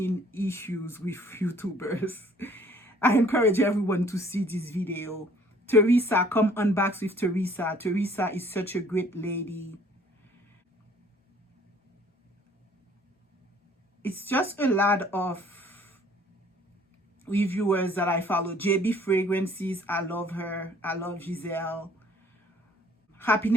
issues with YouTubers. I encourage everyone to see this video. Teresa, come unbox with Teresa. Teresa is such a great lady. It's just a lot of reviewers that I follow. JB Fragrances, I love her. I love Giselle.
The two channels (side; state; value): both; normal; correlation 0.57